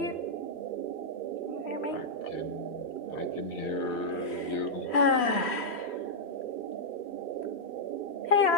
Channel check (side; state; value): right; late; 3.1 ms